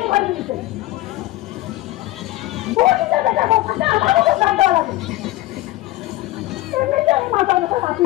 করে দিয়েছে বলতে দেখা কথা আমারও তো কাঁদা লাগে এমনিতে আমি মাথা ব্যথা রাখি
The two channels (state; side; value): quieter; right; 17.6 dB